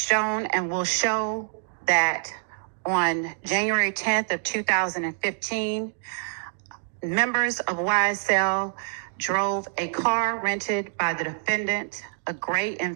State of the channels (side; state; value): left; silent; 61 dB below the other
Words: and will show that on January 10th of 2015, members of YSL drove a car rented by the defendant, a gray